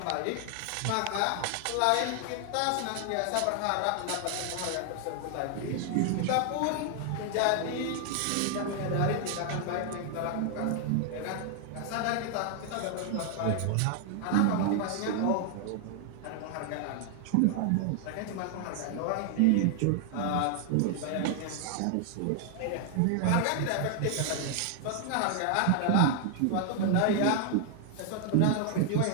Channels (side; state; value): both; different; correlation 0.00